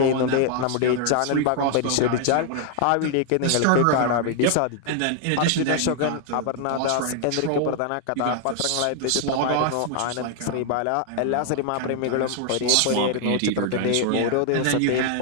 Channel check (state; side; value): different; both; correlation 0.00